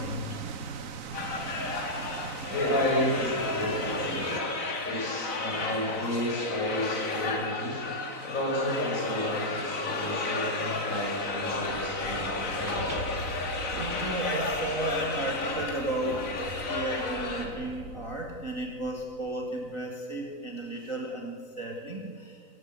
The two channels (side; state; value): right; late; 4.0 ms